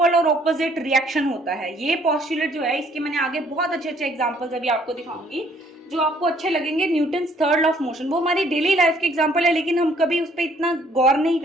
और ऑपोजिट रिएक्शन होता है। ये पोस्टुलेट जो है इसके मैंने आगे बहुत अच्छे अच्छे एग्जांपल्स अभी आपको दिखाऊंगी जो आपको अच्छे लगेंगे। Newton's third law of motion वो हमारी डेली लाइफ के एग्जांपल है, लेकिन हम कभी उस पर इतना गौर नहीं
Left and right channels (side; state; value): both; normal; correlation 0.62